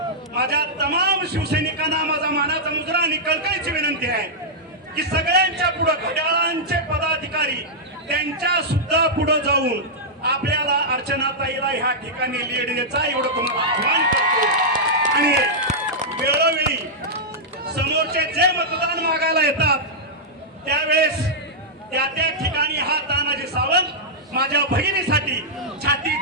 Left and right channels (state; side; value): normal; both; correlation -0.08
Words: माझ्या तमाम शिवसैनिकांना माझा मानाचा मुजरा आणि कळकळीची विनंती आहे की सगळ्यांच्या पुढे घड्याळांचे पदाधिकारी त्यांच्या सुद्धा पुढे जाऊन आपल्याला अर्चनाताईला ह्या ठिकाणी लीड द्यायचा एवढं तुम्हाला आव्हान करतो. आणि वेळोवेळी समोरचे जे मतदान मागायला येतात त्यावेळेस त्या ठिकाणी हा तानाजी सावंत माझ्या बहिणीसाठी